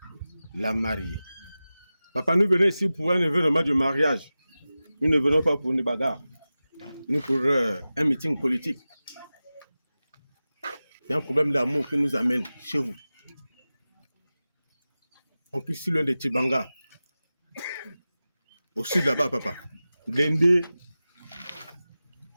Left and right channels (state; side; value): inverted; both; correlation -0.95